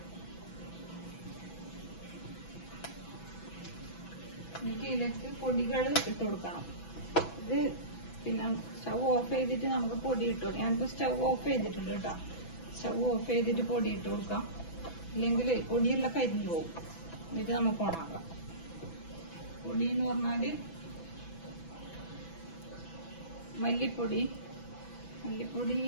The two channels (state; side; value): late; right; 6.0 ms